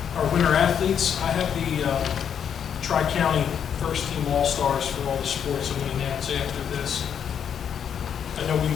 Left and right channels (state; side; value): quieter; right; 8.2 dB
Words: our winter athletes. I have the Tri-County first team All-Stars for all the sports I'm going to announce after this. I know we